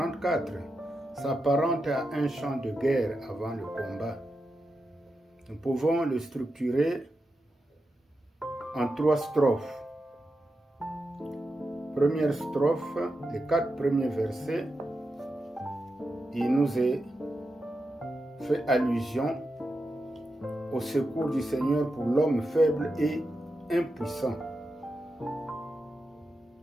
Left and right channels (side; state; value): both; normal; correlation 0.88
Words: s'apparente à un chant de guerre avant le combat. Nous pouvons le structurer en 3 strophes. Première strophe, les 4 premiers versets, il nous est fait allusion au secours du Seigneur pour l'homme faible et impuissant.